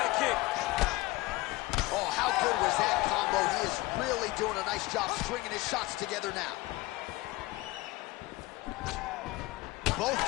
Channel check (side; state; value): right; quieter; 20.5 dB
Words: kick. Oh, how good was that combo? He is really doing a nice job stringing his shots together now. Both